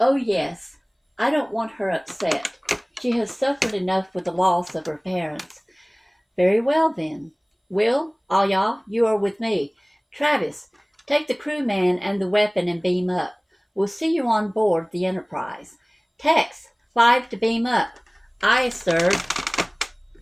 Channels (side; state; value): both; identical; correlation 1.00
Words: yes. I don't want her upset. She has suffered enough with the loss of her parents. Very well, then. Will, all y'all, you are with me. Travis, take the crewman and the weapon and beam up. We'll see you on board the Enterprise. Tex, 5 to beam up. Aye, sir.